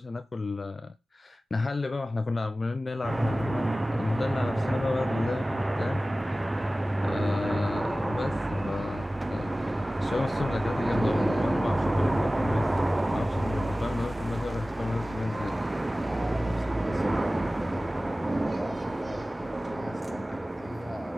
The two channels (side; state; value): both; normal; correlation 0.97